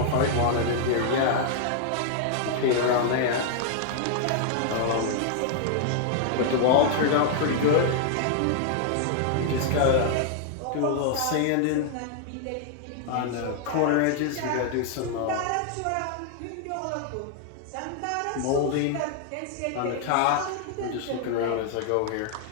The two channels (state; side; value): different; both; correlation 0.00